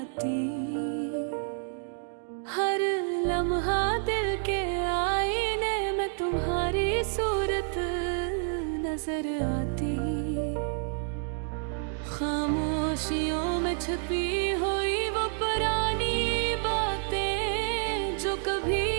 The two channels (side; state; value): left; silent; digital silence